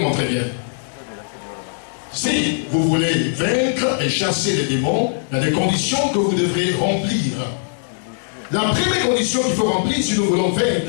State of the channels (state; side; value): silent; right; digital silence